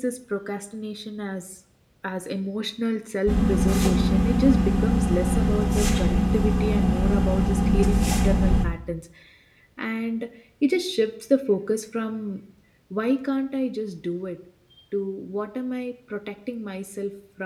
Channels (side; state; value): both; identical; correlation 1.00